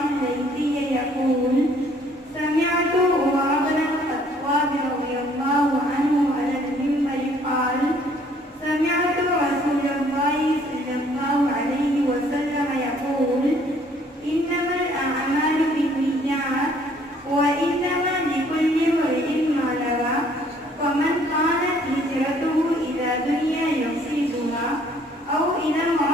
الليثي يقول سمعت عمر بن الخطاب رضي الله عنه على المنبر قال سمعت رسول الله صلى الله عليه وسلم يقول إنما الأعمال بالنيات وإنما لكل امرئ ما نوى فمن كانت هجرته إلى دنيا يصيبها أو إلى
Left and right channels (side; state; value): both; normal; correlation 0.61